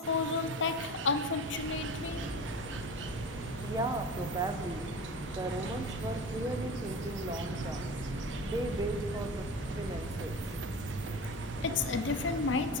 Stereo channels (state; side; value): normal; both; correlation 0.32